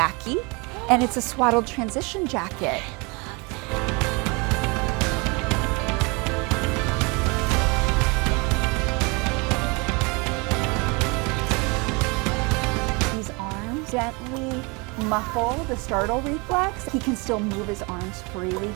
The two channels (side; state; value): left; quieter; 28.9 dB